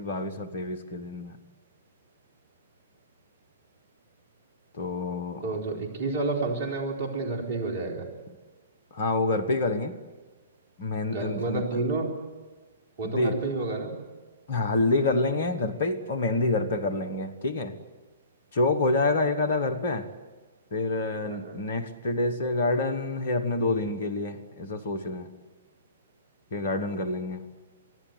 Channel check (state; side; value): inverted; both; correlation -0.42